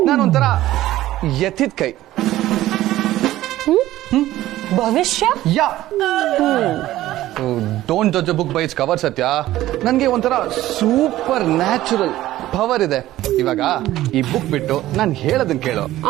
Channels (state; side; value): quieter; left; 15.0 dB